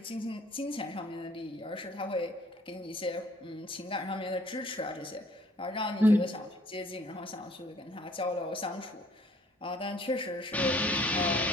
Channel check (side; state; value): both; normal; correlation 0.59